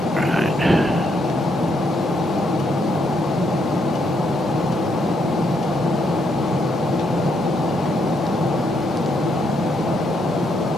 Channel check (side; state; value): both; normal; correlation 0.75